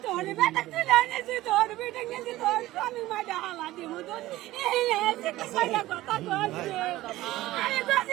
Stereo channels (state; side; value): quieter; left; 16.6 dB